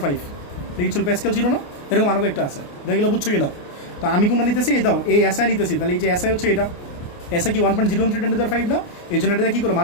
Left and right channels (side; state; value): right; late; 28 ms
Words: দেখি ছিল প্যাসকেল ছিল না, এরকম আরও একটা আছে, দেখলে বুঝছো কি না? তো আমি কোনটা নিতেছি? এই দাও এই এসআই নিতেছি, তাহলে এই যে এসআই হচ্ছে এটা, এসআই কি 1.013 × 10⁵ না, এই জন্য এটা কী করবো